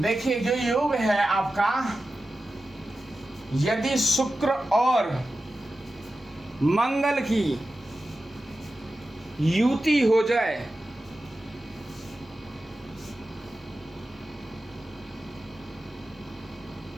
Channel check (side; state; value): both; normal; correlation 0.93